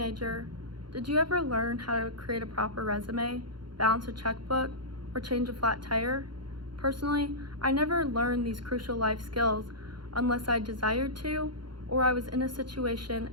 did you ever learn how to create a proper resume, balance a checkbook, or change a flat tire? Personally, I never learned these crucial life skills unless I desired to, or I was in a situation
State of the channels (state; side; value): late; left; 0.72 ms